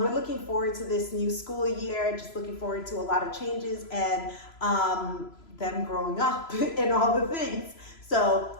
looking forward to this new school year, just looking forward to a lot of changes and them growing up and all the things. So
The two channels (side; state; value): right; late; 3.0 ms